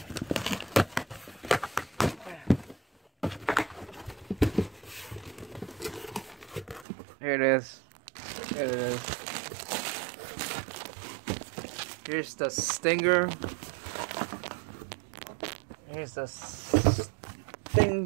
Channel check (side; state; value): left; drops out; at 6.9 s